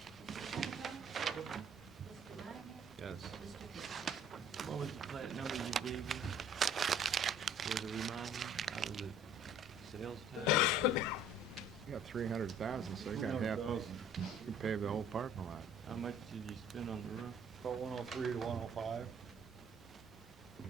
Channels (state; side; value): normal; both; correlation 0.54